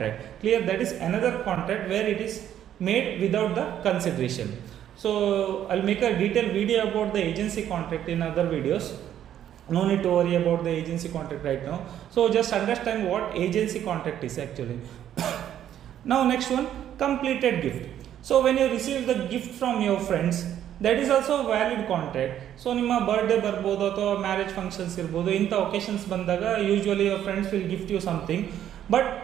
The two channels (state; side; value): quieter; left; 10.7 dB